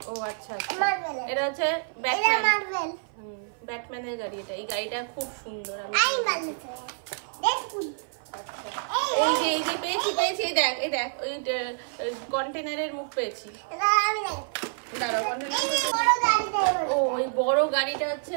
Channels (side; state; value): left; silent; 55 dB below the other